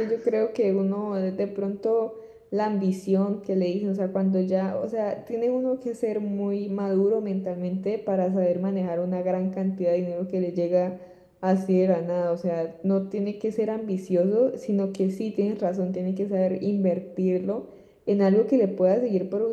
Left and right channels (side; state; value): both; identical; correlation 1.00